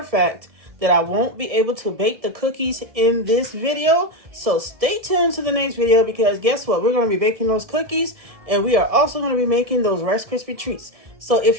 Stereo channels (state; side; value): late; left; 1.7 ms